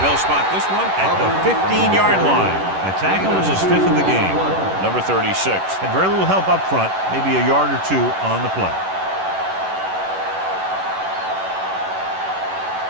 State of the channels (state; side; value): late; left; 11 ms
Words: spot this one at the 15-yard line. A tackle is his 5th of the game. Number 36. Had very little help up front, maybe a yard or 2 on the play.